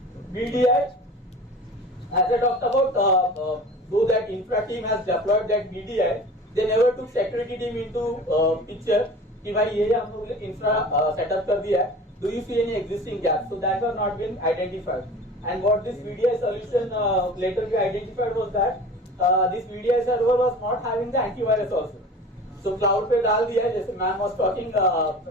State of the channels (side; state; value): both; normal; correlation 0.39